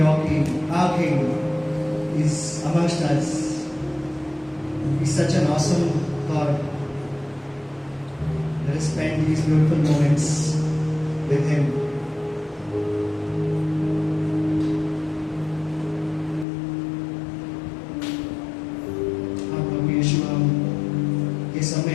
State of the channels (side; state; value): right; drops out; at 16.4 s